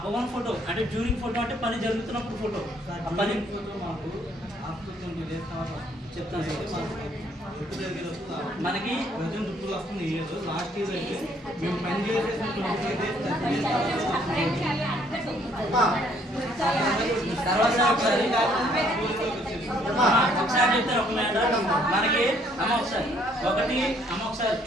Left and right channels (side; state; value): both; normal; correlation 0.65